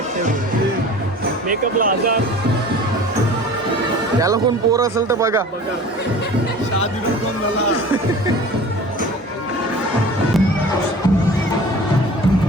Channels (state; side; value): normal; both; correlation 0.41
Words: मेकअपला 1000. त्याला कोण पोर असेल तर बघा.